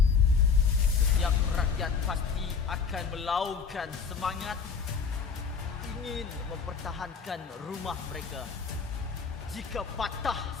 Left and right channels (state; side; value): quieter; right; 5.7 dB